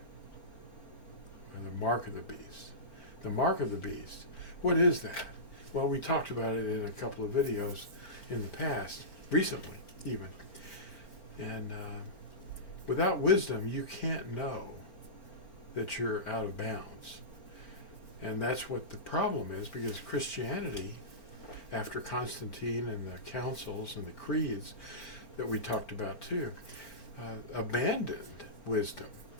or the mark of the beast. The mark of the beast, what is that? Well, we talked about it in a couple of videos in the past, recently even. And without wisdom, you can't know that you're out of bounds. And that's what the problem is, because Christianity, after Constantine and the councils and the creeds that we talked about too, abandoned wisdom.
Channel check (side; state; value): right; late; 4.4 ms